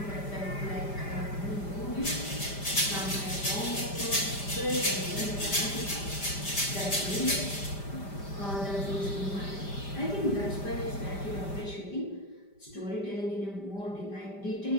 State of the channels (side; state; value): right; late; 5.0 ms